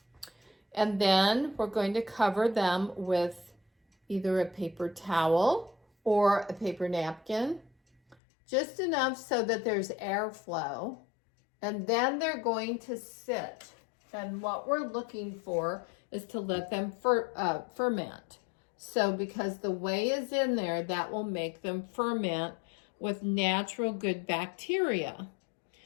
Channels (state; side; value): drops out; right; at 8.2 s